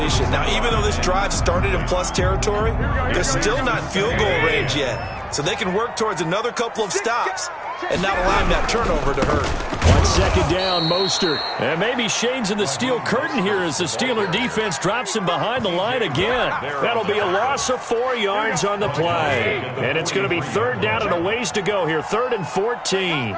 Now, even though this drive started in plus territory, they're still not field goal range yet. So they can work towards another couple of stops and not allow that turnover to hurt. On 2nd down, Mostert. And maybe Shane's in the steel curtain here as the Steeler defense drops him behind the line again. That'll be a loss of 4 yards on the play. And it's going to be 3rd down and a ways to go here. 3rd and 14.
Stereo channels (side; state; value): both; identical; correlation 1.00